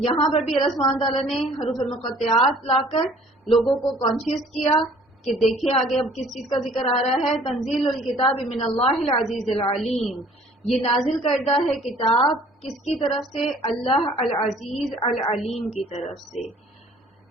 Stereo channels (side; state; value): both; normal; correlation 0.54